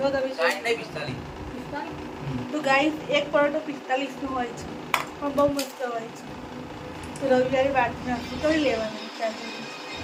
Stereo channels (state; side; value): identical; both; correlation 1.00